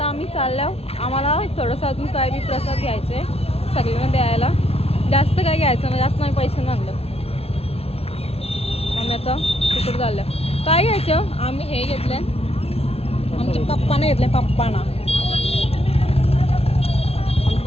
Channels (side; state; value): right; late; 0.29 ms